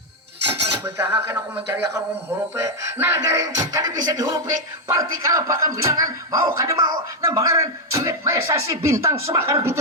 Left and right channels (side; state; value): both; normal; correlation 0.01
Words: Betah kan aku mencari akan hurupe. Nah garing kada bisa dihurupe. Parti kalau bakal bilangan mau kada mau. Nah bangaran duit maesasi bintang semakar